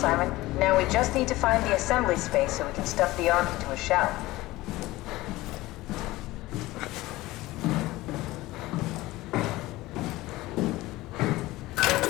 Now we just need to find the assembly space so we can stuff the Ark into a shell.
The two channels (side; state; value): right; quieter; 18.5 dB